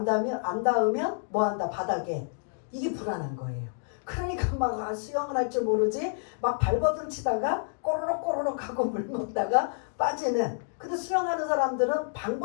닿으면 뭐한다 바닥에 이게 불안한 거예요. 그러니까 막 수영을 할 줄 모르지 막 발버둥 치다가 꼬르륵 하고 물 먹다가 빠지는. 근데 수영하는 사람들은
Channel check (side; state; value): right; silent; digital silence